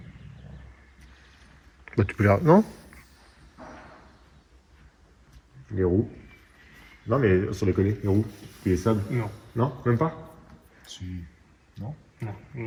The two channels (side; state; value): both; identical; correlation 1.00